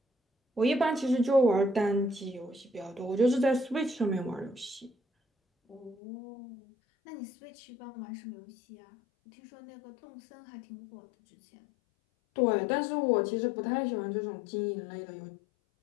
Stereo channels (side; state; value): right; drops out; at 6.0 s